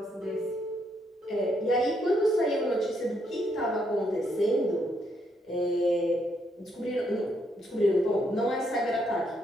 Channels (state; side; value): normal; both; correlation 0.75